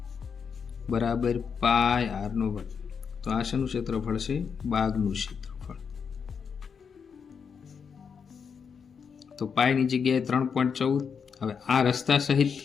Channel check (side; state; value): right; quieter; 6.4 dB